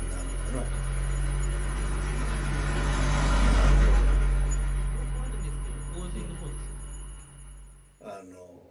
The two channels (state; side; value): identical; both; correlation 1.00